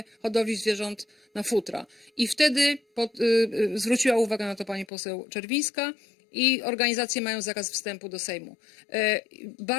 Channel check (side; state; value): right; drops out; at 4.9 s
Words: hodowli zwierząt na futra. I wtedy zwróciła uwagę na to pani poseł Czerwińska i organizacje mają zakaz wstępu do Sejmu.